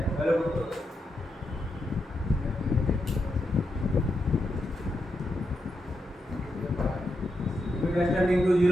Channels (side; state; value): both; normal; correlation 0.84